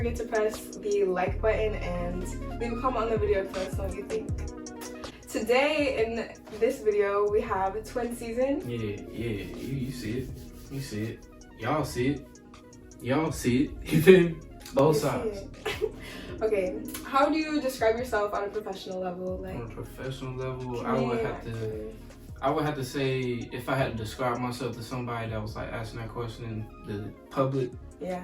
to press the like button and leave a comment on the video to let us know what you think. Today in this video we have Twinszn. Yeah. You see it. You see it. Y'all see it. Y'all see it. You feel me? Both sides. Okay, how do you describe yourself on a professional level? On a professional level, I would have to say, if I had to describe myself to somebody that was like asking that question in the public,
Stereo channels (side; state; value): both; identical; correlation 1.00